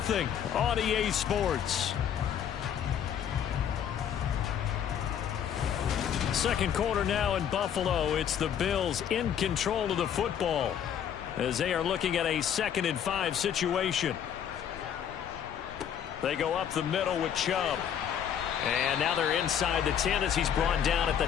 on EA Sports. Second quarter now in Buffalo. It's the Bills in control of the football as they are looking at a 2nd and 5 situation. They go up the middle with Chubb. And now they're inside the 10 as he's brought down at the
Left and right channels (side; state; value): right; quieter; 9.0 dB